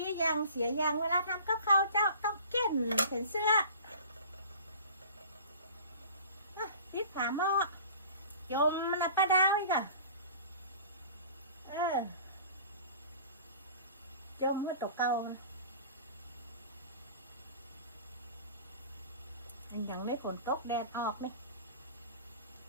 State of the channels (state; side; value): inverted; both; correlation -0.44